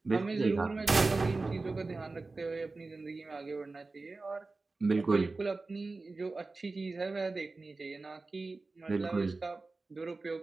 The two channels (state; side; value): quieter; left; 3.6 dB